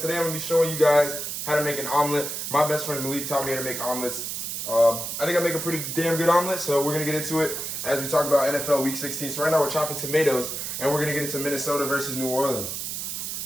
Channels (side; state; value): right; noise; hiss, 4 dB below the sound